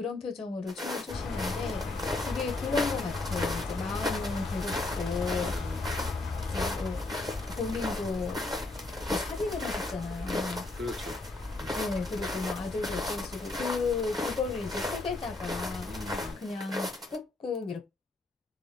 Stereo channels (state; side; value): quieter; right; 3.0 dB